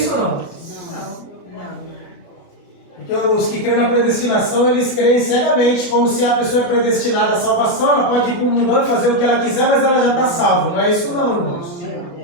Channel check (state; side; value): late; right; 29 ms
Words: ou não? Não. Porque os que creem na predestinação, eles creem cegamente, como se a pessoa é predestinada à salvação, ela pode ir para o mundão e fazer o que ela quiser, mas ela já está salva. Não é isso não, irmãos.